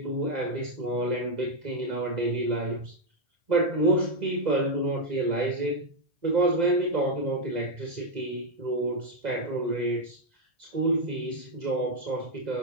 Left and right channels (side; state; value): left; late; 2.0 ms